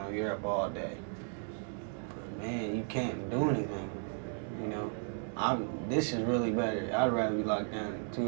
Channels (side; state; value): left; silent; 55 dB below the other